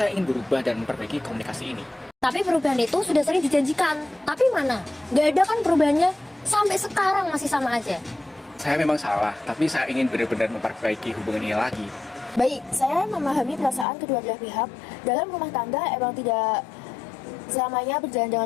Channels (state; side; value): drops out; right; at 13.9 s